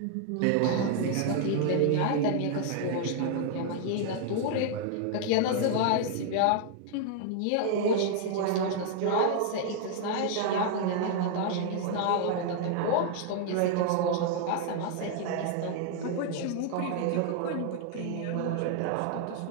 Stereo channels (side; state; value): both; different; correlation 0.00